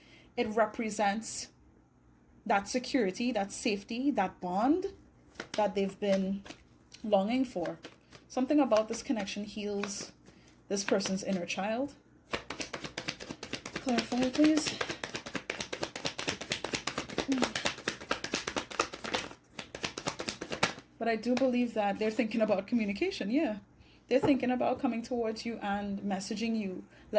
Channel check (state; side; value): identical; both; correlation 1.00